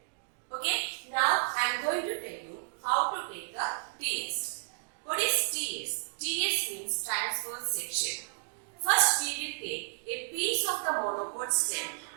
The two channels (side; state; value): left; silent; digital silence